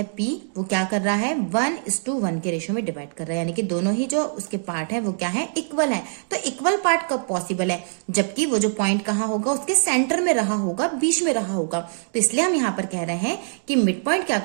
P, वो क्या कर रहा है, 1:1 के रेशियो में डिवाइड कर रहा है, यानी कि दोनों ही जो उसके पार्ट है वो क्या है, इक्वल है। तो इक्वल पार्ट कब पॉसिबल है, जबकि वो जो पॉइंट कहाँ होगा, उसके सेंटर में रहा होगा, बीच में रहा होगा। तो इसलिए हम यहाँ पर कह रहे हैं कि मिड पॉइंट क्या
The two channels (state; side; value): silent; left; digital silence